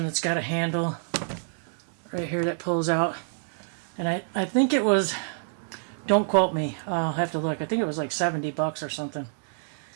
it's got a handle right here that pulls out. And I think it was, don't quote me, I'll have to look. I think it was like $70 or something.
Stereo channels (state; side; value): silent; left; digital silence